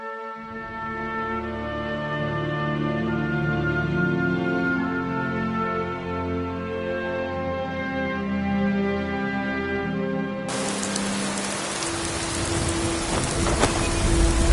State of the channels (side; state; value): both; identical; correlation 1.00